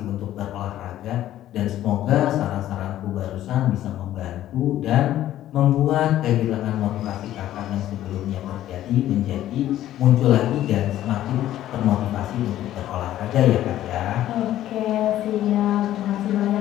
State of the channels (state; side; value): quieter; right; 13.0 dB